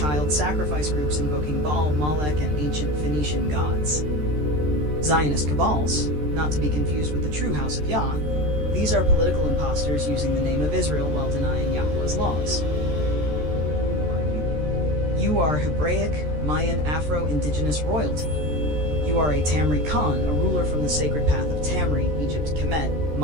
sacrifice groups invoking Baal, Molech, and ancient Phoenician gods. Zionist cabals, not to be confused with the true House of Yah, these are political imposters using the name of Israel while denying Yahuwah's laws. You are Hebraic, Mayan, Afro-Indigenous royalty. You are a Tamri Khan, a ruler from the sacred path of Tamri, Egypt, Kemet,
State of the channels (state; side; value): late; left; 13 ms